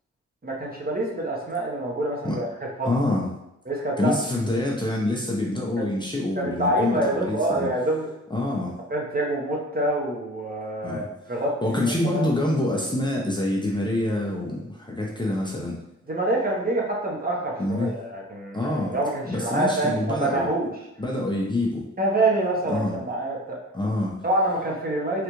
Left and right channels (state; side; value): normal; both; correlation 0.44